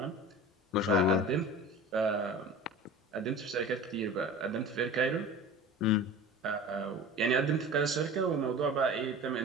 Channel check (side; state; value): both; normal; correlation 0.37